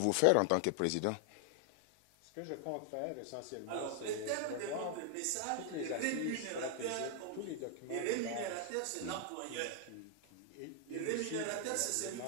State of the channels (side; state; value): both; different; correlation 0.00